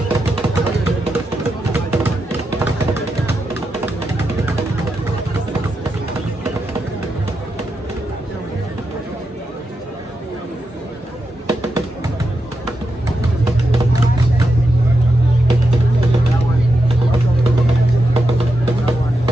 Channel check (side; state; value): both; normal; correlation 0.86